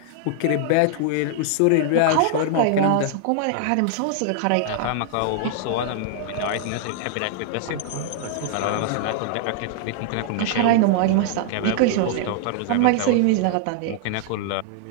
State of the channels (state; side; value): different; both; correlation -0.01